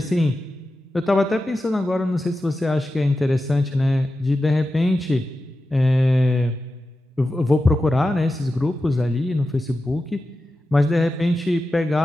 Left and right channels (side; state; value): both; normal; correlation 0.92